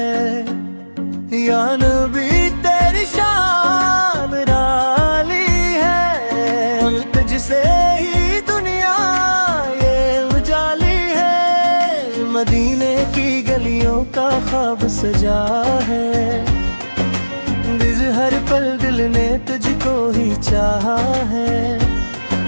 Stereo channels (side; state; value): both; inverted; correlation -1.00